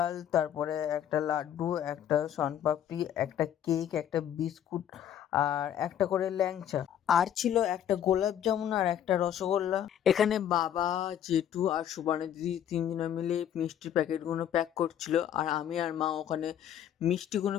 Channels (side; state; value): right; quieter; 10.1 dB